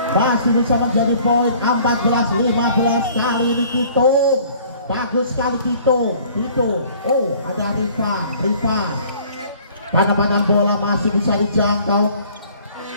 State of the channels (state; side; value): inverted; both; correlation -0.53